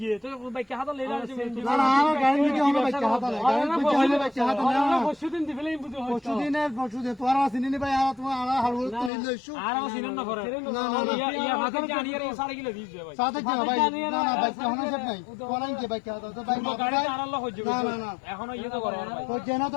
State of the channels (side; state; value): right; drops out; at 9.1 s